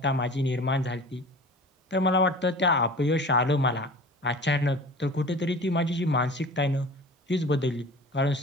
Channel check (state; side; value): normal; both; correlation 0.40